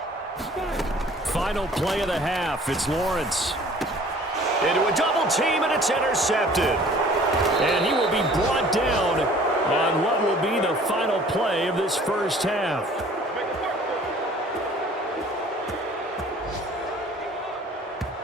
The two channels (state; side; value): normal; both; correlation 0.51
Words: Final play of the half. It's Lawrence. Into a double team, and it's intercepted. And he will be brought down on what will be the final play of this first half.